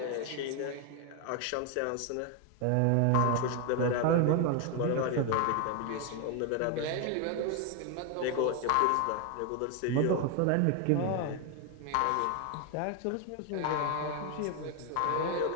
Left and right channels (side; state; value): both; different; correlation 0.01